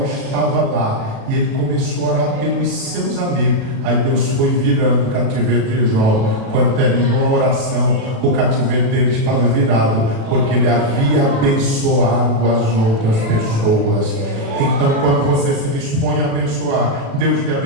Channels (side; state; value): left; late; 36 ms